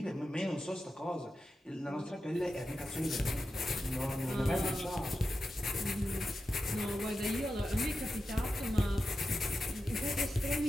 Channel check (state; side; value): normal; both; correlation 0.90